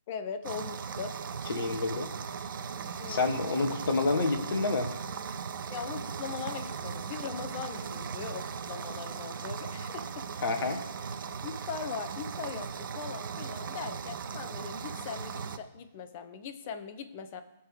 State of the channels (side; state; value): both; inverted; correlation -0.54